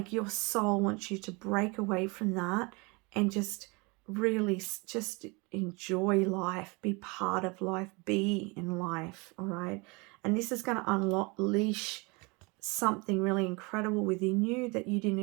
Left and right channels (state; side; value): quieter; left; 27.9 dB